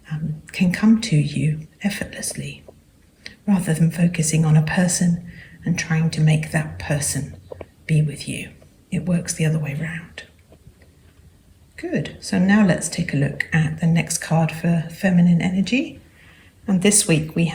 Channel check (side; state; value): both; identical; correlation 1.00